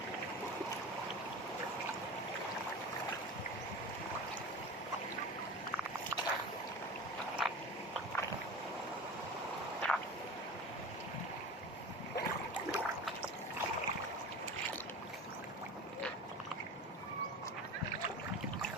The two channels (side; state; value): both; normal; correlation 0.33